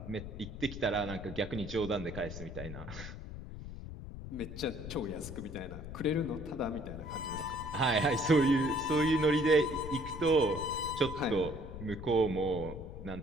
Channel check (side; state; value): left; noise; rumble, 10 dB below the sound